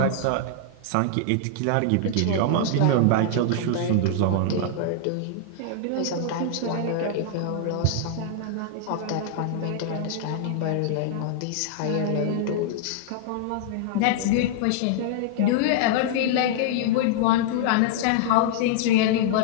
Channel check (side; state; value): both; different; correlation -0.01